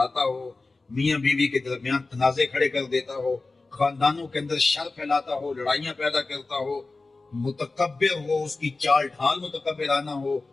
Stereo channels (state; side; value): quieter; right; 3.5 dB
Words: ہو، میاں بیوی کے درمیان تنازع کھڑے کر دیتا ہو، خاندانوں کے اندر شر پھیلاتا ہو، لڑائیاں پیدا کرتا ہو، متکبر ہو، اس کی چال ڈھال متکبرانہ ہو،